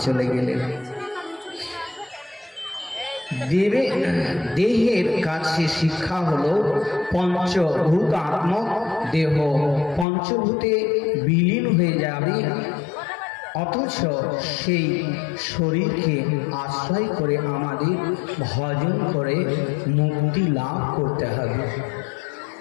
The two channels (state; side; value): drops out; right; at 10.1 s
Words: চলে গেলেন। দেহের কাছে শিক্ষা হলো পঞ্চভূতাত্মক দেহ, পঞ্চভূতে বিলীন হয়ে যাবে, অথচ সেই শরীরকে আশ্রয় করে আমাদের ভজন করে মুক্তি লাভ করতে হবে।